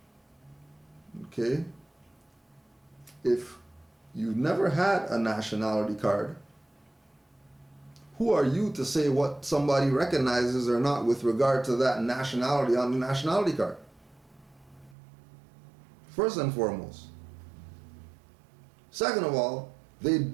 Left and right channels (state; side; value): drops out; left; at 15.0 s